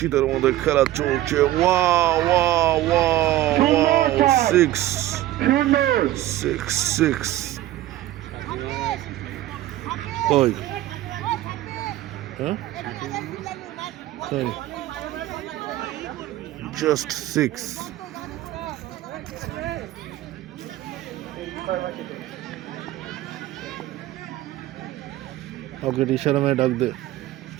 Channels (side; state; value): left; quieter; 14.8 dB